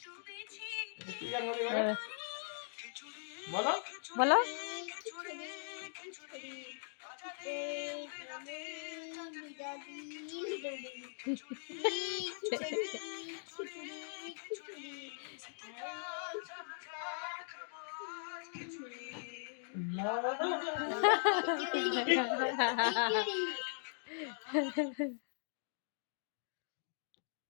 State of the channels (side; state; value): right; silent; digital silence